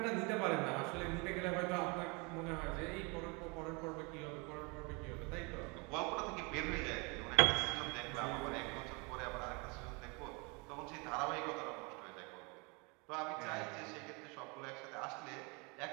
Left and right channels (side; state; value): left; quieter; 29.9 dB